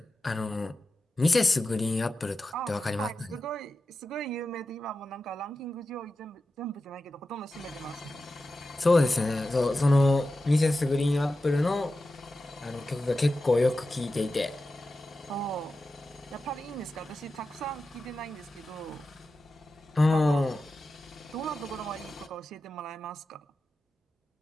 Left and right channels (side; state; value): both; normal; correlation 0.92